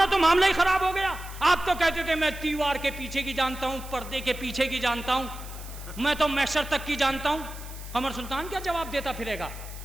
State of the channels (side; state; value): right; noise; hiss, 17 dB below the sound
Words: तो मामला ही खराब हो गया। आप तो कहते थे मैं दीवार के पीछे की जानता हूं, पर्दे के पीछे की जानता हूं, मैं तो मैशर तक की जानता हूं। कमर सुल्तान क्या जवाब देता फिरेगा?